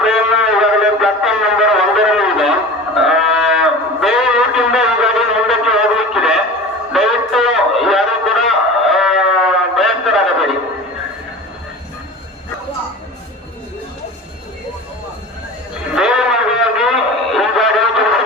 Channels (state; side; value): normal; both; correlation 0.35